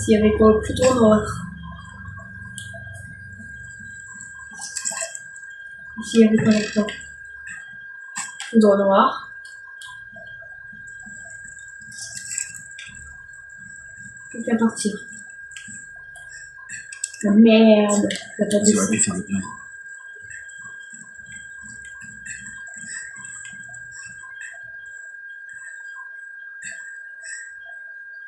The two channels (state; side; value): identical; both; correlation 1.00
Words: il y avait quoi? Plutôt noir. Ici il y avait quoi là-dedans? Plutôt noir. Plus qu'à partir. Ah, merde, t'as pas Tu aurais dessus. pu faire le plein.